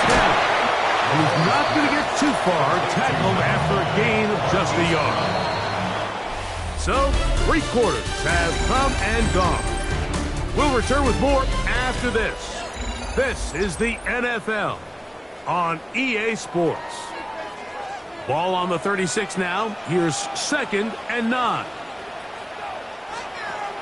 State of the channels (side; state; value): both; identical; correlation 1.00